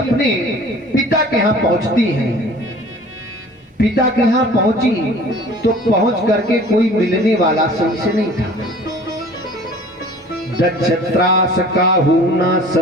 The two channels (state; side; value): normal; both; correlation 0.47